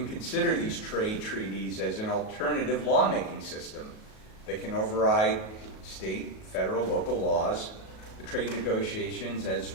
consider these trade treaties as an alternative lawmaking system that can override state, federal, local laws The trade negotiations, as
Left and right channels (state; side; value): late; right; 37 ms